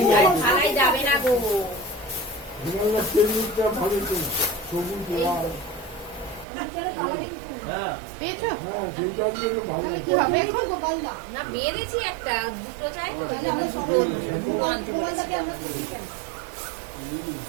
থালাই যাবে না গো হিমালয় তেলটা ভালো তো সবুজ লাল হ্যাঁ। পেয়েছো? হ্যাঁ সেইটা দিয়ে তো ভালো কি হবে এখন গোপালদা? না বেড়েছি একটা দুটো চাই তো তাহলে আমরা সব গোপালদাকে আমরা খুশি চাই।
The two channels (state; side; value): drops out; left; at 6.5 s